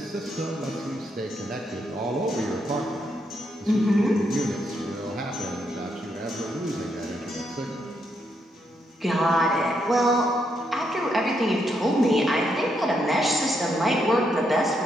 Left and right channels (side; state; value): both; normal; correlation 0.78